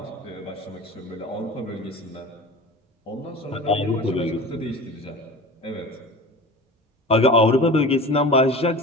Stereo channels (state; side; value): normal; both; correlation 0.35